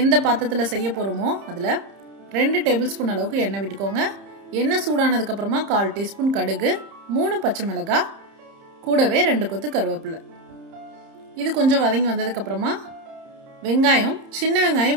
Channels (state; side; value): late; left; 30 ms